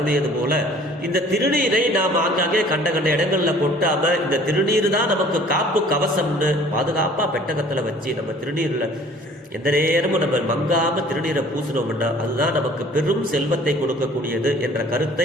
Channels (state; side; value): normal; both; correlation 0.52